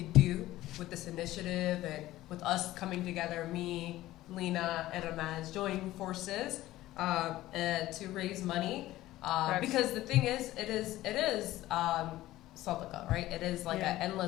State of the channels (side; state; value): right; quieter; 15.8 dB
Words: do with this initiative, and with us coming together, me, Lena, and Ramaz joining forces and to raise money. Because the thing is, it is sadaqah, right? It is like an